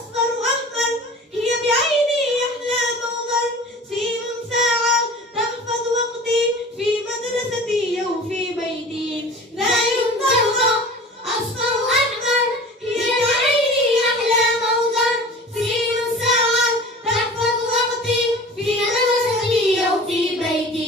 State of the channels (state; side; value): normal; both; correlation 0.40